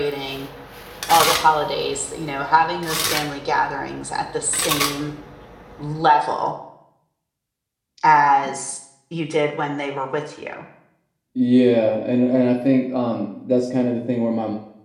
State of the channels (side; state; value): both; identical; correlation 1.00